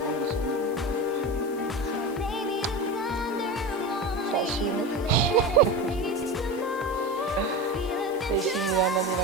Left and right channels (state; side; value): noise; left; hiss, 21 dB below the sound